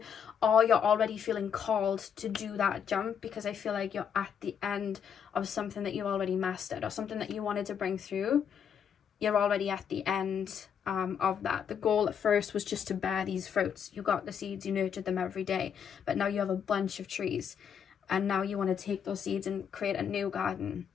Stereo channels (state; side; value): quieter; right; 7.7 dB